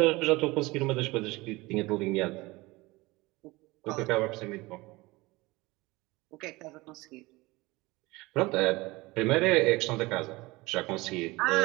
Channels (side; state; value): left; quieter; 21.8 dB